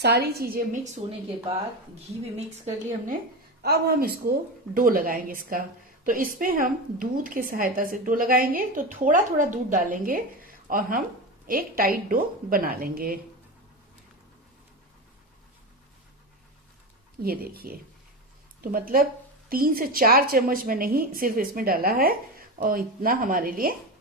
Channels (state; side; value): normal; both; correlation 0.20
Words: चीजें मिक्स होने के बाद घी भी मिक्स कर लिया हमने। अब हम इसको डो लगाएंगे इसका। तो इसमें हम दूध की सहायता से डो लगाएंगे। तो थोड़ा थोड़ा दूध डालेंगे और हम एक टाइट डो बना लेंगे। ये देखिए, तो मतलब 3 से 4 चम्मच में नहीं, सिर्फ इसमें डाला है और इतना हमारे लिए